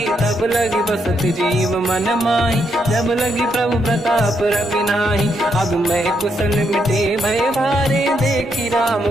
तब लगी बसत जीव मन माही जब लगी प्रभु प्रताप रविनाही अब मैं कुशल मिटे भय भारे देखी राम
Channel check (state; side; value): normal; both; correlation 0.78